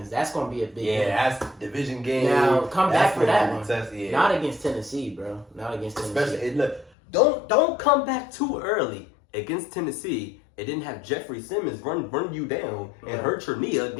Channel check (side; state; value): right; drops out; at 6.9 s